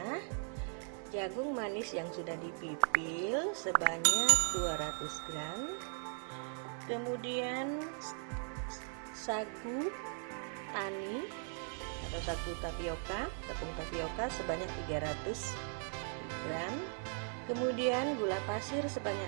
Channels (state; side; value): silent; left; 52 dB below the other